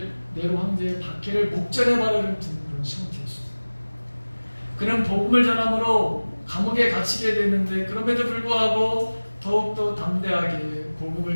네로 황제의 박해를 목전에 바라는 그런 상태였어요. 그는 복음을 전함으로 감옥에 갇히게 되는데 그럼에도 불구하고 더욱더 담대하게 복음을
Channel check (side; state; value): both; inverted; correlation -1.00